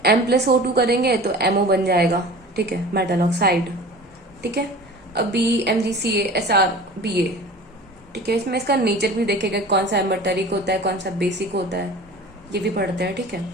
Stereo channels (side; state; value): both; normal; correlation 0.40